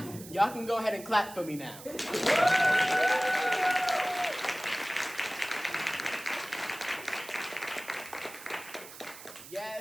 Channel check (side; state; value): right; noise; hiss, 15 dB below the sound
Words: Y'all can go ahead and clap for me now.